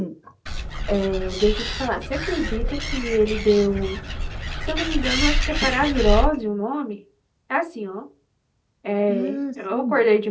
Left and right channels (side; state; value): both; identical; correlation 1.00